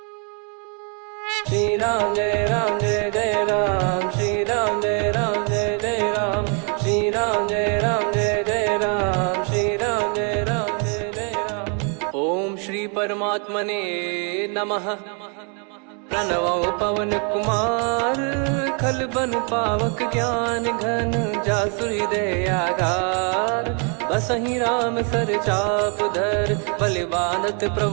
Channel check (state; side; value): quieter; left; 38.4 dB